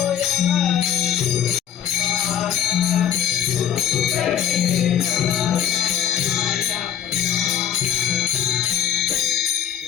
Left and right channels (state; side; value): quieter; right; 9.7 dB